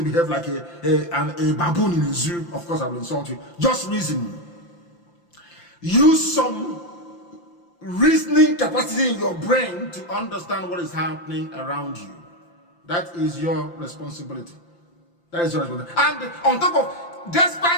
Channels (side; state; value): right; late; 5.8 ms